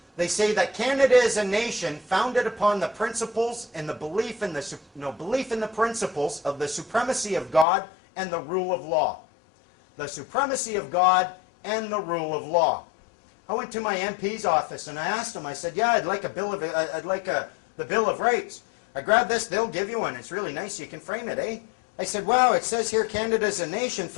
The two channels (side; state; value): right; drops out; at 7.7 s